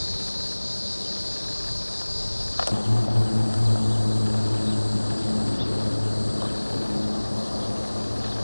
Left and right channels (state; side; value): inverted; both; correlation -1.00